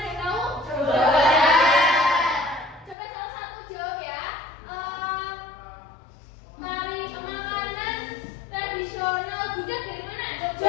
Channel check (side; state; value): right; drops out; at 3.0 s